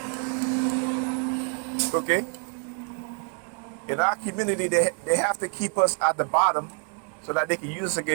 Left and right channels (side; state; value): left; quieter; 38.6 dB